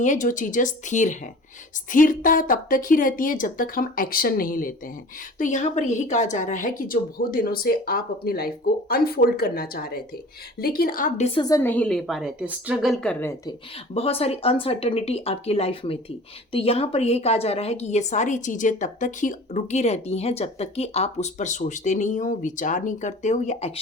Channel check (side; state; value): both; normal; correlation 0.43